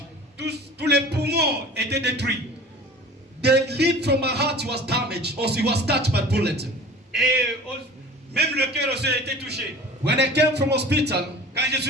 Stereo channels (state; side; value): normal; both; correlation 0.41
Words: tous les poumons étaient détruits. The lead from my heart was damaged. Also, it was touched by bullet. Et même le cœur aussi a été touché. When I came from hospital, Quand je